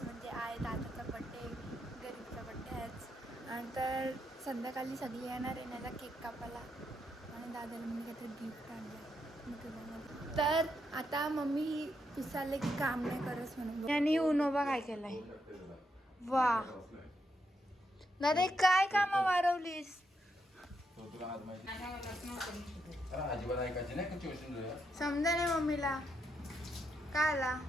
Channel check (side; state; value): both; normal; correlation 0.81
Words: म्हणजे आहे दादाचा बड्डे, गरीबचा बड्डे आहेच. आणि तर संध्याकाळी सगळी येणार आहे माझा केक कापायला. आणि दादाला मी काहीतरी गिफ्ट आणलं. तर आता मम्मी विचारले की काम नाही करस म्हणून. आणि उनोबा काय केलाय. वा दादा काय काम वारवलीस. समजा नाही मम्मीला काय आला.